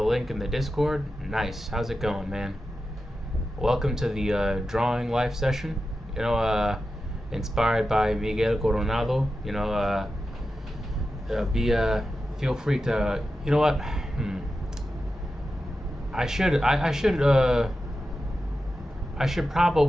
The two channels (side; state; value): both; normal; correlation 0.91